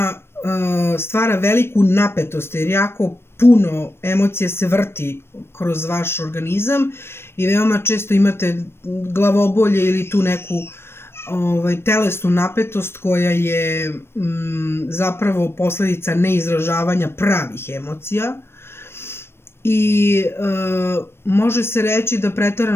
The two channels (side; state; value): right; late; 0.12 ms